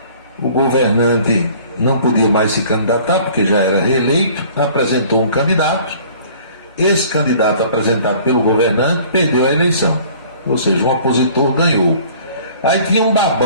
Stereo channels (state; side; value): inverted; both; correlation -0.51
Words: O governante não podia mais se candidatar porque já era reeleito, apresentou um candidato. Esse candidato apresentado pelo governante perdeu a eleição, ou seja, um opositor ganhou. Aí tinha um